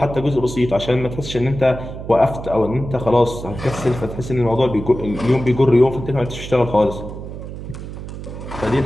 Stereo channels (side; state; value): right; noise; hum, 10 dB below the sound